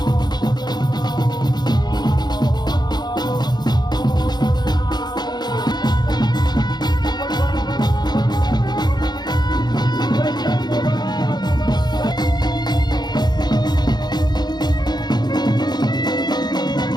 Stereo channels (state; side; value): late; right; 0.20 ms